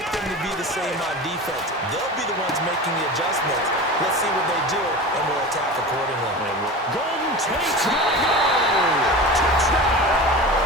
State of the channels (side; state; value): both; normal; correlation 0.31